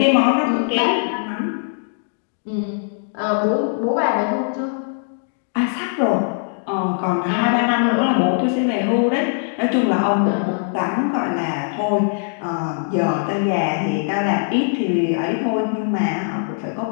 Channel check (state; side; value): silent; right; digital silence